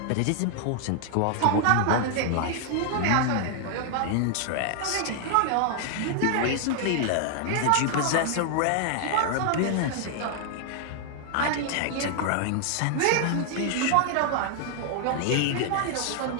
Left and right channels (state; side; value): different; both; correlation 0.00